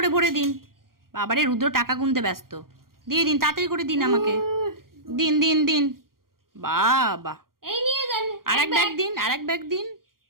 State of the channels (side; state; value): left; late; 0.92 ms